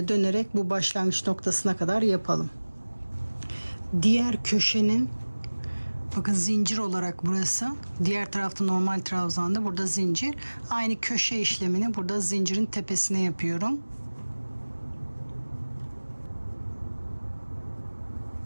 da dönerek bu başlangıç noktasına kadar yapalım. Diğer köşenin, bakın zincir olarak burası. Diğer tarafta normal trabzanda, burada zincir. Aynı köşe işlemini burada zincirin tepesine yapıyorum.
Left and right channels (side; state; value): both; inverted; correlation -1.00